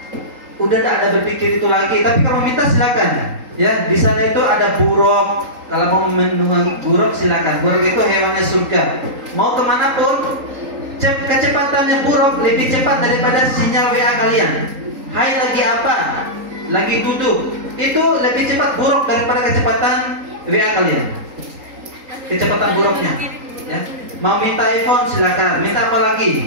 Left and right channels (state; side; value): late; left; 3.8 ms